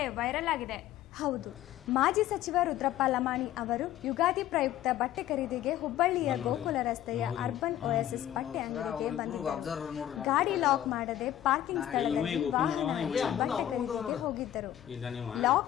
ವೈರಲ್ ಆಗಿದೆ. ಹೌದು, ಮಾಜಿ ಸಚಿವ ರುದ್ರಪ್ಪ ಲಮಾಣಿ ಅವರು ಯುಗಾದಿ ಪ್ರಯುಕ್ತ ಬಟ್ಟೆ ಖರೀದಿಗೆ ಹುಬ್ಬಳ್ಳಿಯ ಗೋಕುಲ ರಸ್ತೆಯ ಅರ್ಬನ್ ಓಎಸ್ಎಸ್ ಬಟ್ಟೆ ಅಂಗಡಿಗೆ ಬಂದಿದ್ದರು. ಗಾಡಿ ಲಾಕ್ ಮಾಡದೆ ಪಾರ್ಕಿಂಗ್ ಸ್ಥಳದಲ್ಲಿ ವಾಹನ ಹಚ್ಚಿ ಬಟ್ಟೆ ಖರೀದಿಗೆ ಹೋಗಿದ್ದರು.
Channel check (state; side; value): quieter; right; 12.3 dB